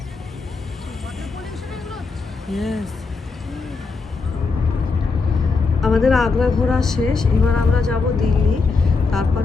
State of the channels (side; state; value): right; quieter; 4.3 dB